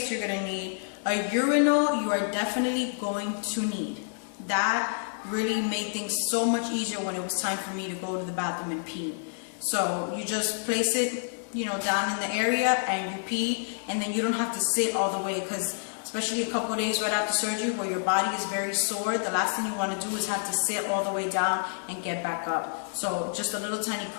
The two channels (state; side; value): silent; right; digital silence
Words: you're gonna need. A urinal you are definitely going to need. That really made things so much easier when it was time for me to go to the bathroom and pee. So you just place it, you know, down in the area and you pee, and then you don't have to sit all the way, because especially a couple of days right after surgery where your body is very sore, the last thing you want to do is have to sit all the way down and get back up. So just a little tiny